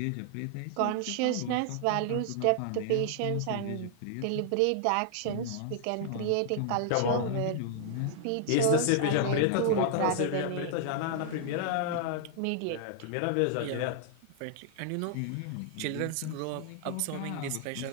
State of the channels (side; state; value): both; different; correlation -0.01